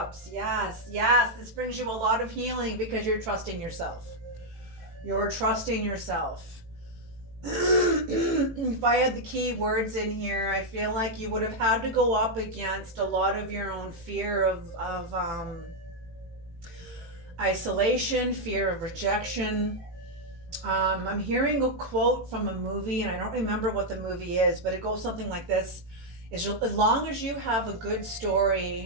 Yes, this brings you a lot of healing because you're trusting yourself. You're trusting yourself. If I had the key words in here, I feel like you would have had to go up against a lot of your own fear of isolation, fear of rejection. I'm hearing a quote from a movie, and I don't remember what the movie is, but it goes something like this. As long as you have a good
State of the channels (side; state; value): left; late; 18 ms